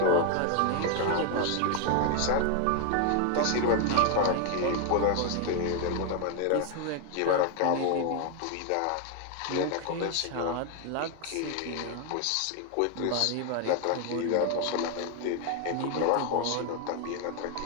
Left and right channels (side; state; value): both; different; correlation 0.00